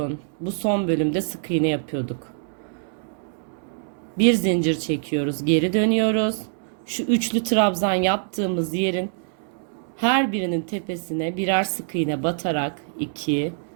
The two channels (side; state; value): left; silent; 62 dB below the other